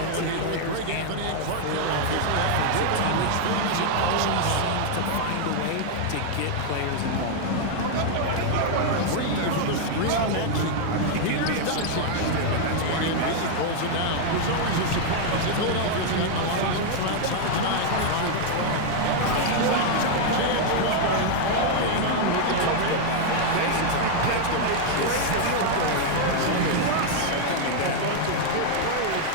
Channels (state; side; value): different; both; correlation 0.00